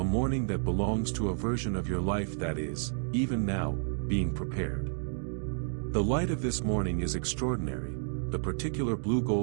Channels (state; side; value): silent; left; digital silence